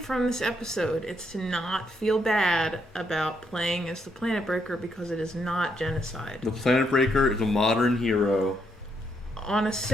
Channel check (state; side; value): normal; both; correlation 0.76